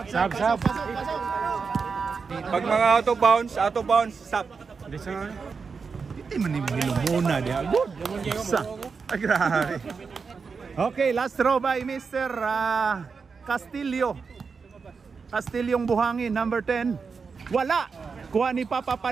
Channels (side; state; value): left; quieter; 5.2 dB